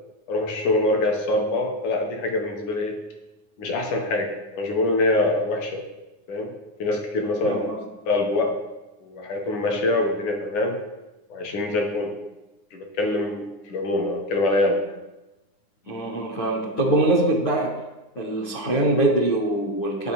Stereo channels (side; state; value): right; late; 9.7 ms